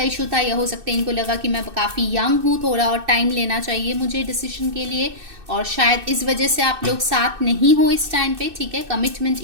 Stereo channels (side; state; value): left; late; 2.6 ms